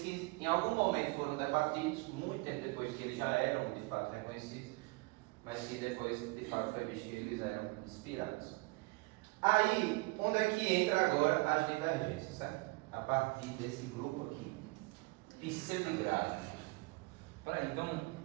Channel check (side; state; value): left; quieter; 25.7 dB